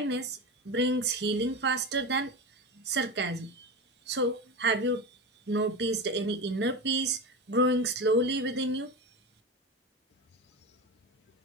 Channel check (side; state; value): both; normal; correlation 0.23